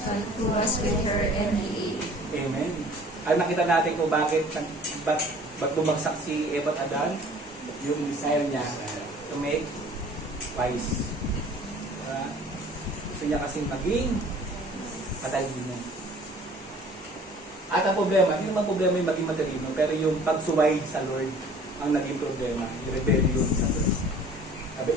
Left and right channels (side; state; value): both; normal; correlation 0.50